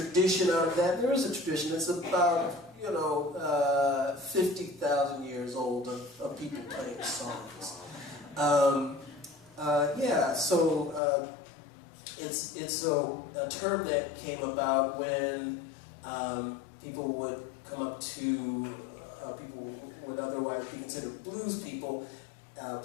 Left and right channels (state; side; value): drops out; right; at 11.0 s